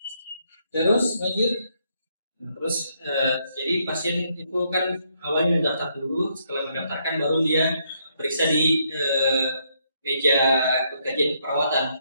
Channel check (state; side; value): inverted; both; correlation -0.74